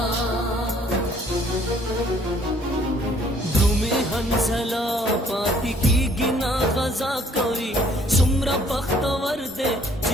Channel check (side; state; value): both; normal; correlation 0.60